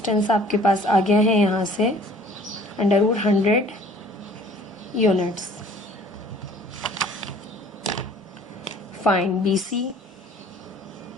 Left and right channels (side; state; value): both; normal; correlation 0.53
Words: आपके पास आ गया है यहाँ से under root 100 units. Find B C.